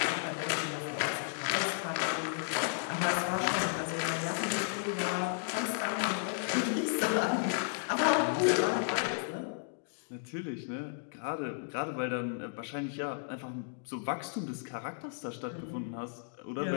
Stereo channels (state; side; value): silent; right; digital silence